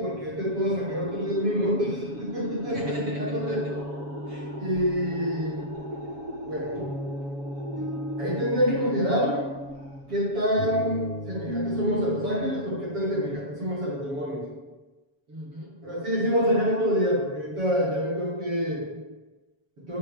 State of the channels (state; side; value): late; left; 7.2 ms